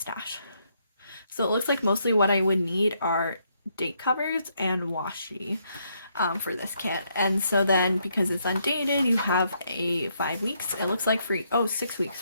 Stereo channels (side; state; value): both; inverted; correlation -0.75